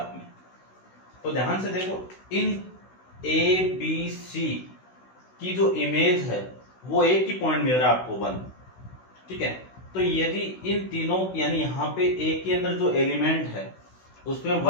में। तो ध्यान से देखो, इन a b c की जो इमेज है वो एक ही पॉइंट मिल रहा है आपको 1। ठीक है, तो यदि इन तीनों यानी यहाँ पे a के अंदर जो एलिमेंट है उसमें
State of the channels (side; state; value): right; late; 16 ms